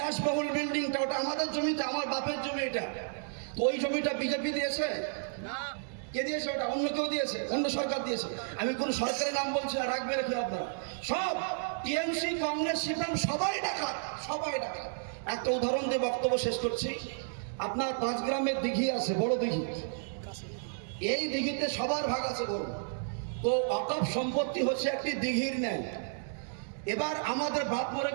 বিল্ডিংটা, ওটা আমাদের জমিতে, আমার বাপের জমি এটা। তো ওই জমিটা বিজেপি দিয়েছে? কে দিয়েছে? ওটা অন্য কেউ দিয়েছে, অন্য সরকার দিয়েছে। আমি কোন সরকারের নাম বলছি না, রাখবে রেখে আপনারা সব টিএমসি, কংগ্রেস, সিপিএম সবাই ডাকাত, সবাই ডাকাত। একটা উদাহরণ দিয়ে বক্তব্য শেষ করছি। আপনার 5 গ্রামের দিঘি আছে, বড় দিঘি, এই দিঘিতে সবার ভাগ আছে বড়। তো ওয়াকফ সম্পত্তি হচ্ছে একটি দিঘির ন্যায়। এবার আমাদের বাপ মরে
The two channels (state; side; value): silent; left; digital silence